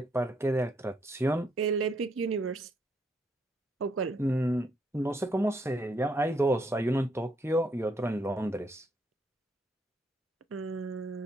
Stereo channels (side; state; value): both; normal; correlation 0.74